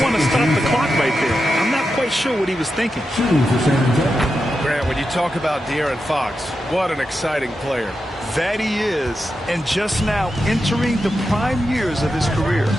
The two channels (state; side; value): normal; both; correlation 0.89